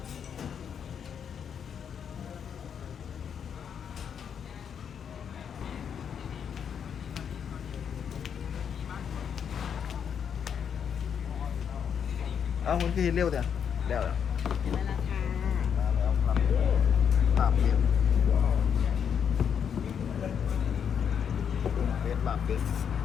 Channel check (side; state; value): right; quieter; 7.7 dB